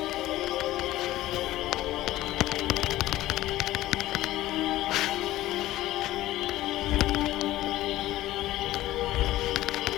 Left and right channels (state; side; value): quieter; right; 15.7 dB